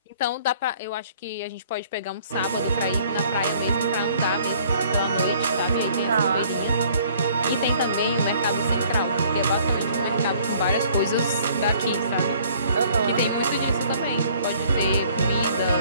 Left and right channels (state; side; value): inverted; both; correlation -0.57